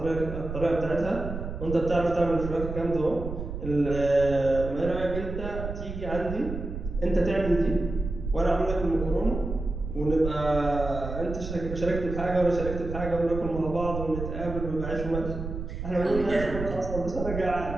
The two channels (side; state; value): right; noise; rumble, 7 dB below the sound